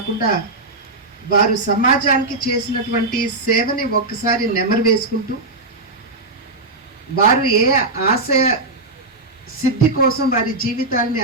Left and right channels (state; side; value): quieter; left; 3.1 dB